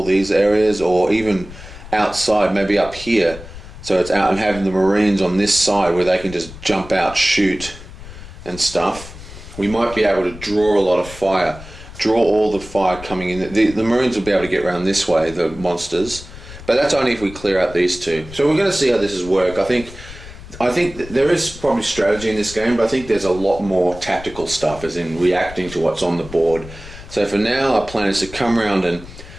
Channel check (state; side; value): noise; left; rumble, 15 dB below the sound